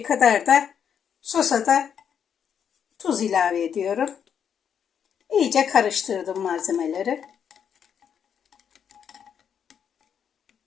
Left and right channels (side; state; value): right; quieter; 8.0 dB